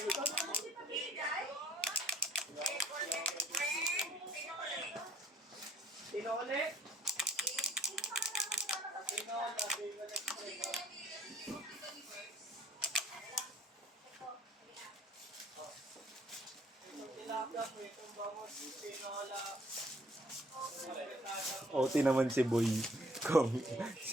Sino ulit? OT naman si Boy. Kung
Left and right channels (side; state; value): both; normal; correlation 0.60